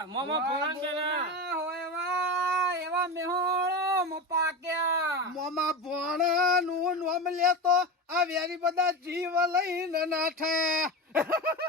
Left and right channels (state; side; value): normal; both; correlation 0.22